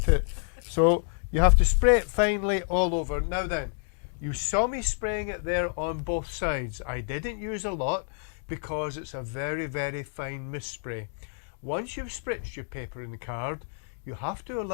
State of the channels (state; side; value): silent; right; 56 dB below the other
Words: it. So you have to spray it finely all over. Now then, you saw me spraying it there on both sides. I didn't use a lot because it's a very, very fine mist spray. Once you've spritzed your paper and the card, you have to